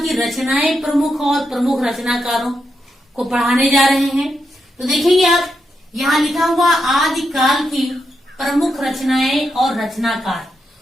की रचनाएं प्रमुख और प्रमुख रचनाकारों को पढ़ाने जा रहे हैं। तो देखेंगे आप यहाँ लिखा हुआ आदिकाल की प्रमुख रचनाएं और रचनाकार।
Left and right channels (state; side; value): normal; both; correlation 0.84